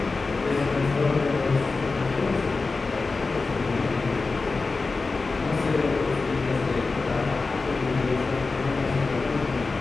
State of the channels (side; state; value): right; quieter; 3.9 dB